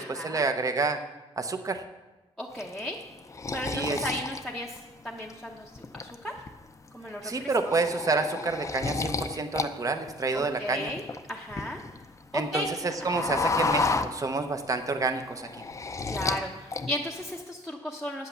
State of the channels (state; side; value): normal; both; correlation 0.48